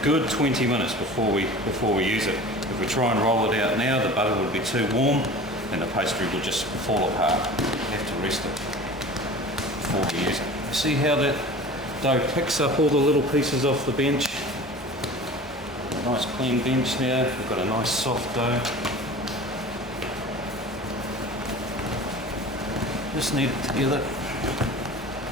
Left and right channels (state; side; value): normal; both; correlation 0.39